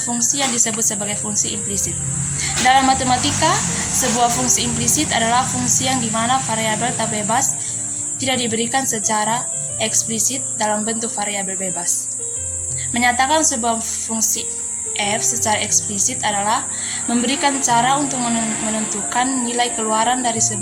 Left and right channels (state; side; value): identical; both; correlation 1.00